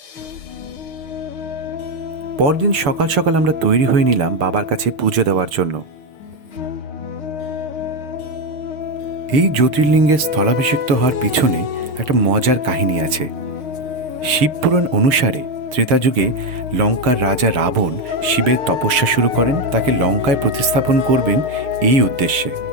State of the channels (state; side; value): late; left; 6.5 ms